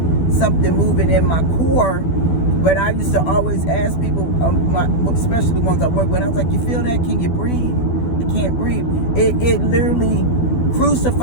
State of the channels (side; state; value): right; late; 12 ms